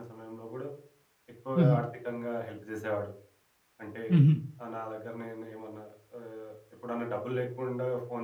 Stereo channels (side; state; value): both; identical; correlation 1.00